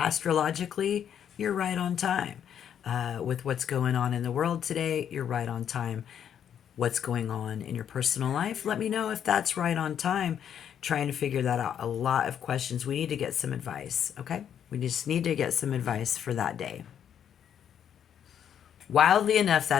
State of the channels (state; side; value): quieter; right; 9.0 dB